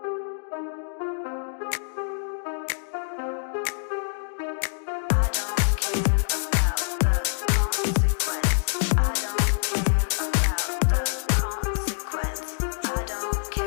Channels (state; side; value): silent; right; digital silence